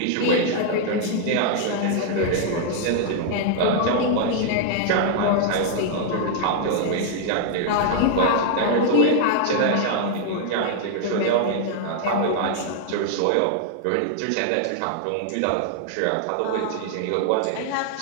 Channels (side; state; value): both; different; correlation 0.00